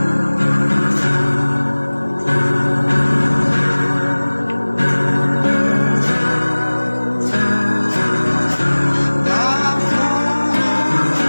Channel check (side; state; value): both; inverted; correlation -1.00